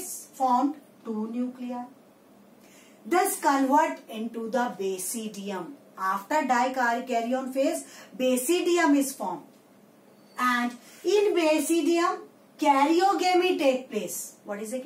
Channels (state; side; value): identical; both; correlation 1.00